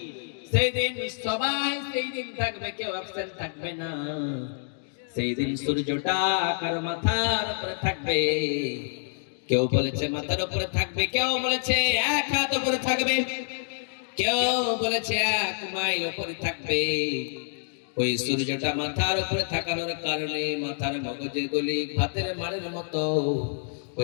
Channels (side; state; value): right; silent; digital silence